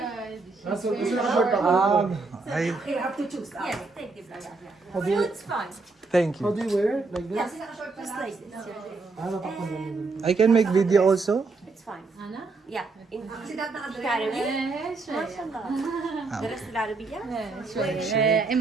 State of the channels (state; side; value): quieter; left; 3.9 dB